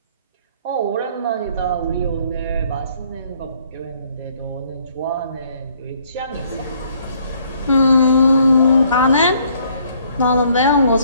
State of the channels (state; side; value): inverted; both; correlation -0.64